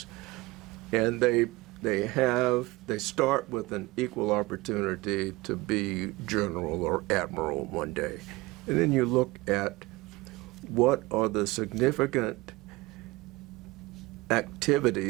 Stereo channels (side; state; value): left; quieter; 21.4 dB